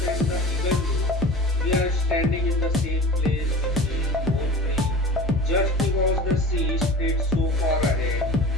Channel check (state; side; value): normal; both; correlation 0.37